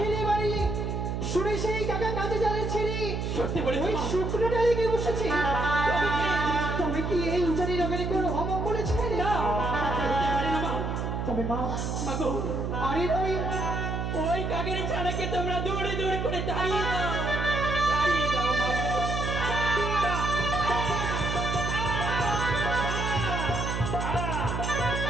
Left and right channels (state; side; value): noise; right; hum, 2 dB below the sound